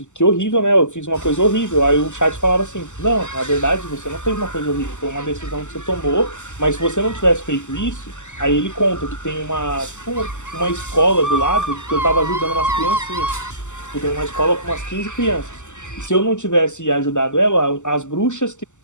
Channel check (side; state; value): right; late; 0.84 ms